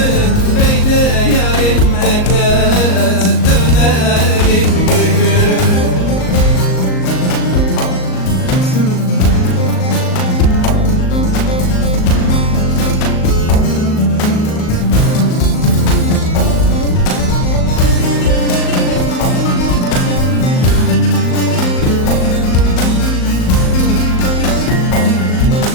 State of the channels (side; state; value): right; late; 38 ms